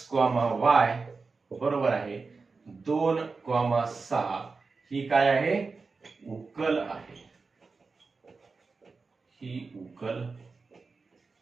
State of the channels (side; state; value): left; quieter; 4.3 dB